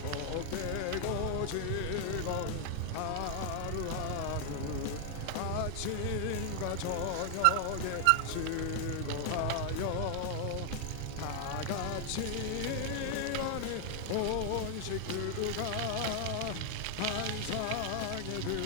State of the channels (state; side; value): different; both; correlation 0.00